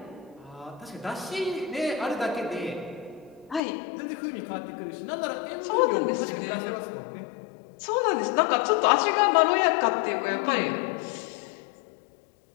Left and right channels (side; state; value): right; drops out; at 3.6 s